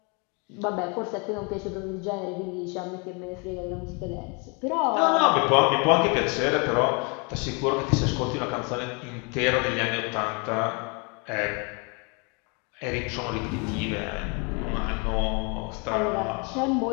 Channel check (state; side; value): quieter; right; 33.0 dB